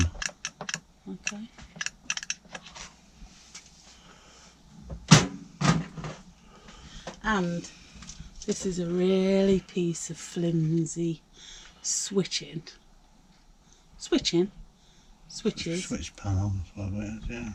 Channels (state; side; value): identical; both; correlation 1.00